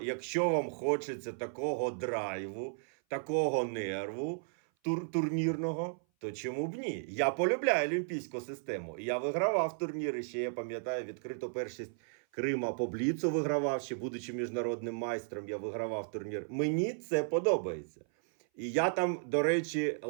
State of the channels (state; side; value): silent; left; 55 dB below the other